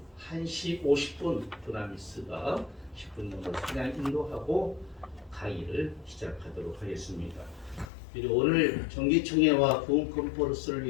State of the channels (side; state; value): right; drops out; at 7.9 s